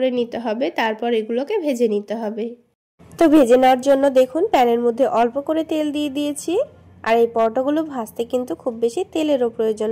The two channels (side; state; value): both; identical; correlation 1.00